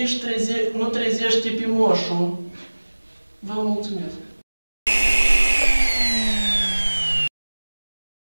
și nu trezește pe moșul. Vă mulțumesc!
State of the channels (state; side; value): inverted; both; correlation -1.00